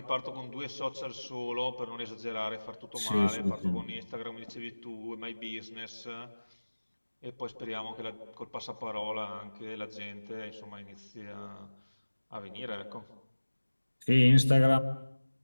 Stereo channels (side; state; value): both; inverted; correlation -1.00